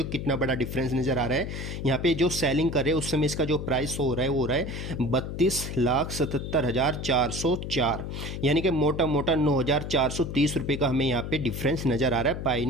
हो कितना बड़ा डिफरेंस नज़र आ रहा है। यहाँ पे जो सेलिंग कर रहे हैं उस समय इसका जो प्राइस हो रहा है वो हो रहा है 32,77,404, यानी कि मोटा मोटा 9,430 रुपये का हमें यहाँ पे डिफरेंस नज़र आ रहा है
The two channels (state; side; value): noise; left; hum, 6 dB below the sound